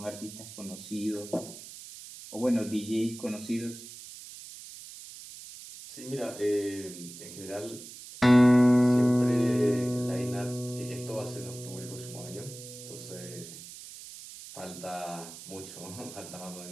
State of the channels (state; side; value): noise; right; hiss, 14 dB below the sound